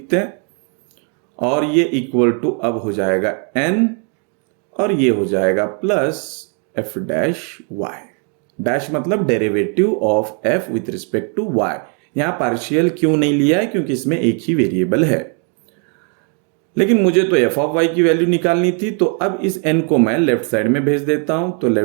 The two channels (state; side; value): quieter; left; 39.9 dB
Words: हैं, और ये इक्वल टू अब हो जाएगा n, और ये हो जाएगा plus f dash y। Dash मतलब derivative of f with respect to y। यहां पार्शियल क्यों नहीं लिया है, क्योंकि इसमें एक ही वेरिएबल है, लेकिन मुझे तो एफ ऑफ वाई की वैल्यू निकालनी थी। तो अब इस n को मैं लेफ्ट साइड में भेज देता हूं, तो